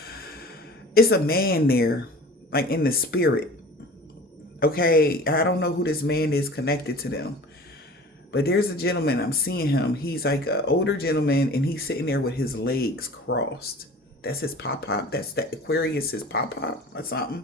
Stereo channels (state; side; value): normal; both; correlation 0.42